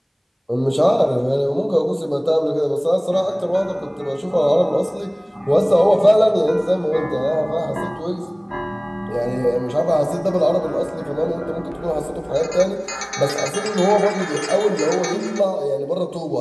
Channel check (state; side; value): identical; both; correlation 1.00